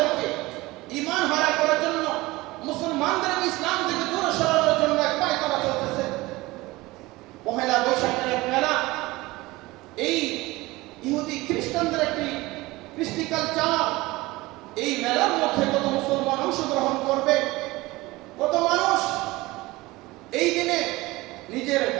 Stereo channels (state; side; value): quieter; left; 20.4 dB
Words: ঈমান হারা করার জন্য, মুসলমানদেরকে ইসলাম থেকে দূরে সরানোর জন্য এক পায়তারা চলতেছে। পহেলা বৈশাখের এক মেলা, এই ইহুদি খ্রিস্টানদের একটি কৃষ্টি কালচার, এই মেলার মধ্যে কত মুসলমান অংশগ্রহণ করবে, কত মানুষ এই দিনে নিজের